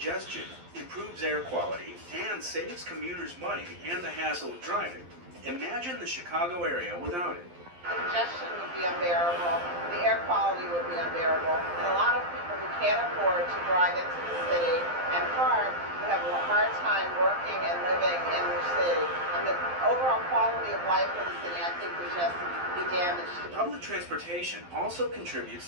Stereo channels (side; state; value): left; late; 11 ms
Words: improves air quality, and saves commuters money and the hassle of driving. Imagine the Chicago area without it. Congestion would be unbearable, the air quality would be unbearable, and a lot of people who can't afford to drive into the city and park would have a hard time working and living in the city. And the overall quality of life in the city, I think, would just be damaged. Public transportation also